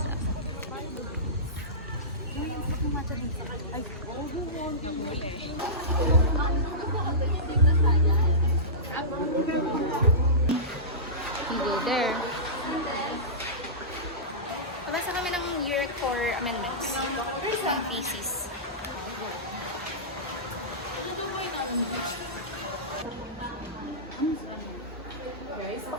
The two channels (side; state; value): both; normal; correlation -0.19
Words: There. Nabasa kami ng year 4 amendments. Ng thesis.